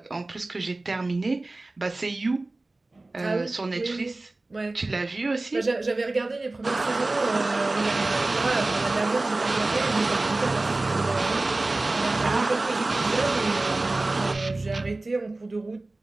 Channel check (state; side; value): quieter; left; 3.0 dB